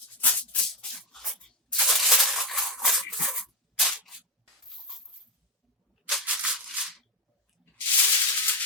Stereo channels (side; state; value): both; normal; correlation 0.10